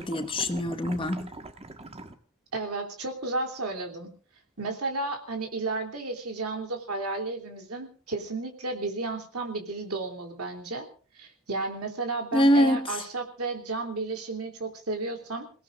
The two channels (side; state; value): both; normal; correlation 0.31